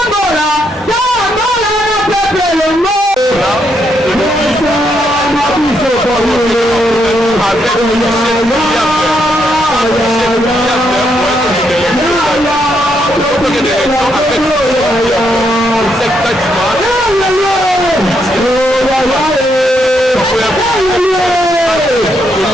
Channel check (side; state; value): both; normal; correlation 0.77